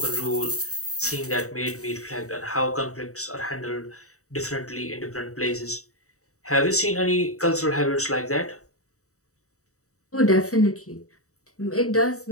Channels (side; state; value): right; late; 0.65 ms